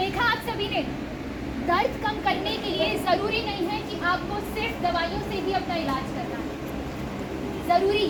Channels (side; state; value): both; identical; correlation 1.00